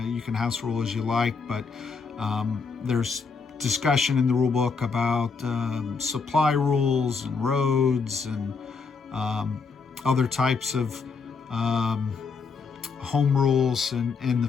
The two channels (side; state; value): right; quieter; 5.0 dB